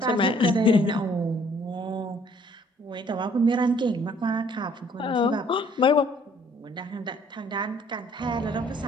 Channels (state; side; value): normal; both; correlation 0.60